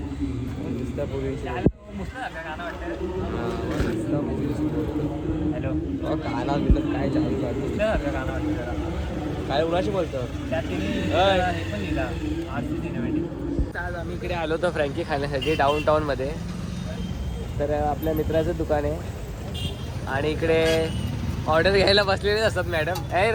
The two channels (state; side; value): identical; both; correlation 1.00